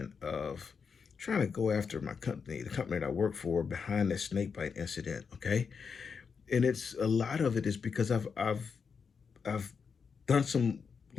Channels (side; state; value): right; quieter; 5.9 dB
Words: of trying to go after my company, the company that I work for, behind this snakebite incident. Okay, and it's a lot of it is because I've done some